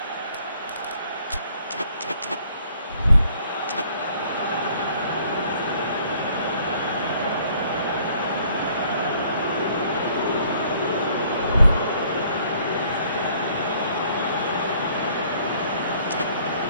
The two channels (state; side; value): inverted; both; correlation -0.61